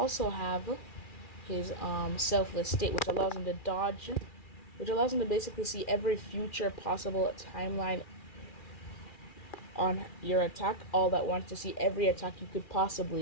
have his Selfless State, which allows him to dodge, which allows him to basically see every future possible timeline on your attack, all that wants to see every attack you could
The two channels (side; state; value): right; late; 2.4 ms